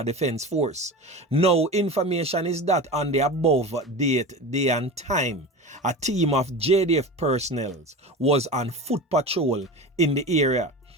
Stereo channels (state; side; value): normal; both; correlation 0.30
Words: Defense Force. Now, information is that on the above date, day and time, a team of JDF personnel was on foot patrol in the area